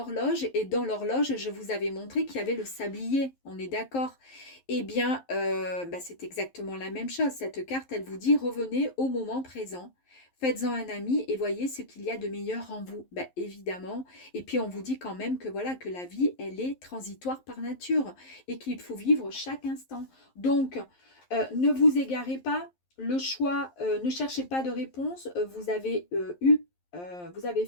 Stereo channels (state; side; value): late; right; 11 ms